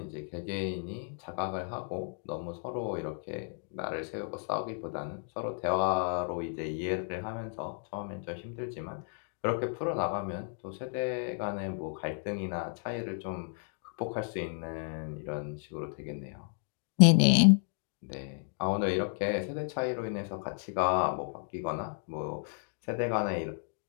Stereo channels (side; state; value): right; silent; 56 dB below the other